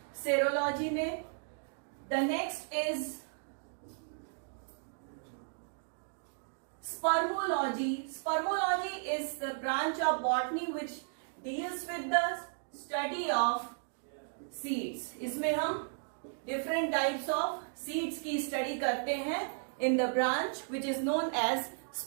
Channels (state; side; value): silent; left; digital silence